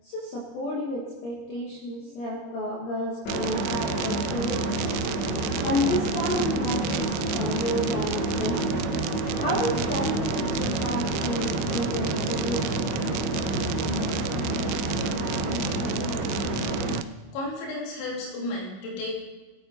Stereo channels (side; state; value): right; late; 25 ms